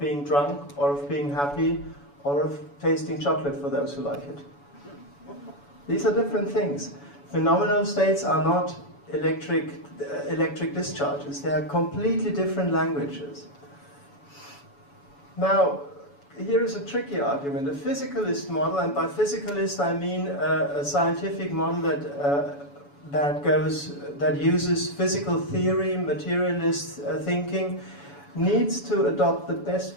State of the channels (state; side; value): late; right; 7.0 ms